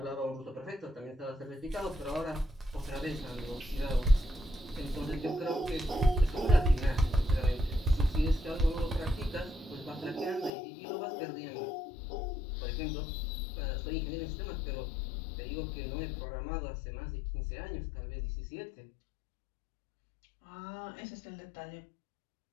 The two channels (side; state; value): right; drops out; at 10.5 s